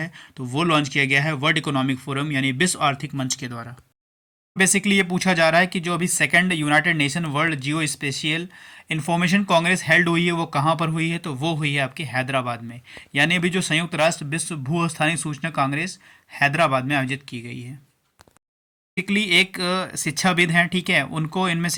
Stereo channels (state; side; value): identical; both; correlation 1.00